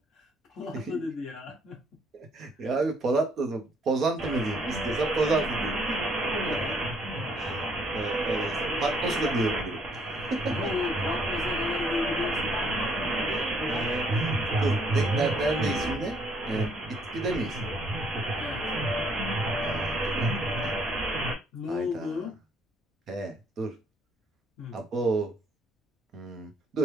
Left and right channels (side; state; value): both; normal; correlation 0.66